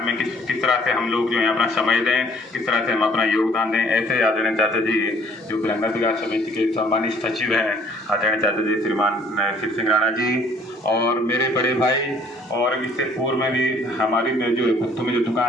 में किस तरह से हम लोग जो है अपना समय दें, किस तरह से हम अपना योगदान दें, ऐसे आदरणीय चाचा जी जो भिलंगा विकास समिति के सम्मानित सचिव हैं, आदरणीय चाचा जी श्रीमान शिव सिंह राणा जी, और मेरे बड़े भाई, और इससे पूर्व में भी हमारी जो गुत्तू में जो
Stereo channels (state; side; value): normal; both; correlation 0.58